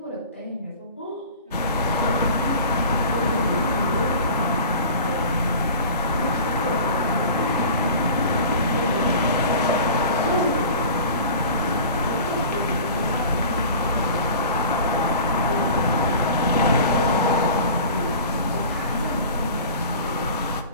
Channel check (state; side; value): inverted; both; correlation -0.40